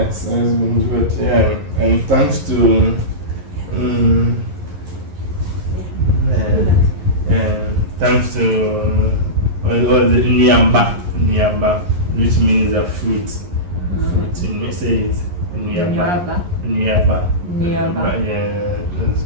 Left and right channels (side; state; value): left; late; 11 ms